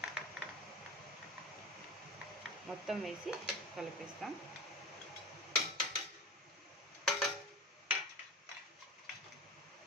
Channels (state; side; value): normal; both; correlation 0.31